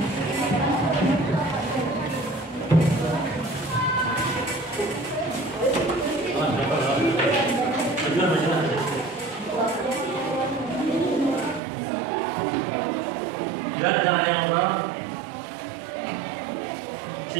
Dan jangan yang ngobrol.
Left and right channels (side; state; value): left; drops out; at 11.6 s